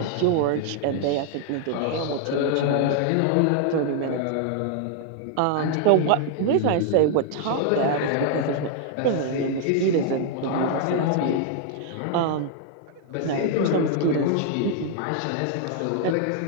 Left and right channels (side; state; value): both; different; correlation 0.00